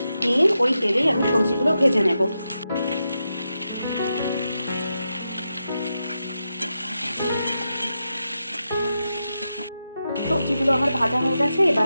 নিয়ে ওই তেলেই আমি সবজিগুলো ভেজে নেব। সবজিগুলো আমার ভাজা হয়ে গেছে, এবার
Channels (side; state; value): both; inverted; correlation -0.88